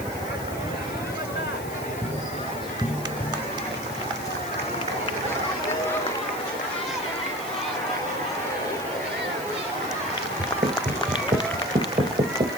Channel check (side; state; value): left; noise; hiss, 14 dB below the sound